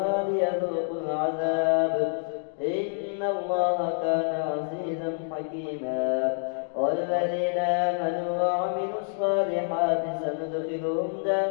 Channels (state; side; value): silent; right; digital silence